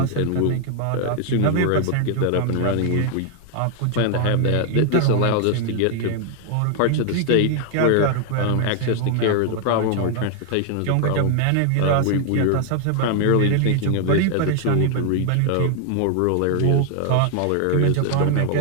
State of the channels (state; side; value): different; both; correlation 0.00